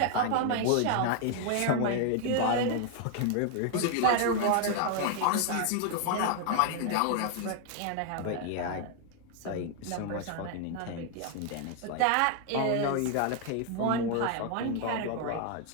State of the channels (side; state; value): both; different; correlation 0.00